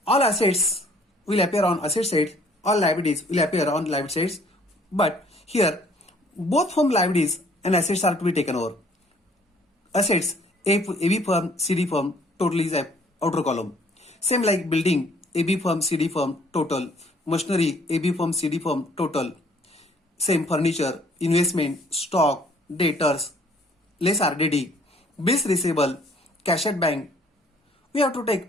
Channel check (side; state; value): both; normal; correlation 0.59